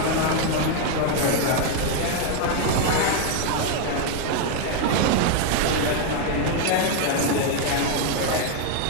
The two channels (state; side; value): different; both; correlation 0.01